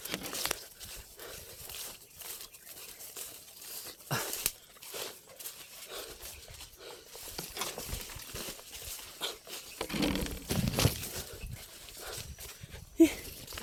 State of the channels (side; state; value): both; identical; correlation 1.00